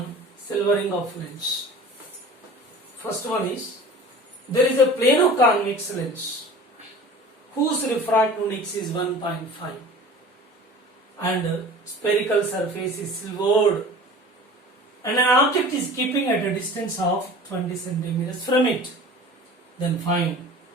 silvering of lens. First one is, there is a plano-convex lens whose refractive index is 1.5 and spherical surface is silvered and an object is keeping at a distance of 20 centimeters from it. Then find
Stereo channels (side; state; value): both; normal; correlation 0.41